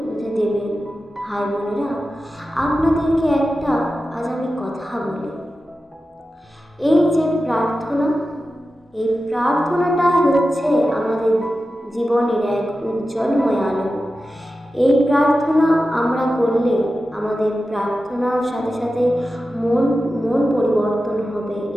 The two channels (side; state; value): both; normal; correlation 0.93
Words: বুঝে দেবেন। ভাই বোনেরা, আপনাদেরকে একটা আজ আমি কথা বলি। এই যে প্রার্থনা, এই প্রার্থনাটাই হচ্ছে আমাদের জীবনের এক উজ্জ্বলময় আলো। এই প্রার্থনা আমরা করলে আমাদের প্রার্থনার সাথে সাথে মন পরিবর্তন হবে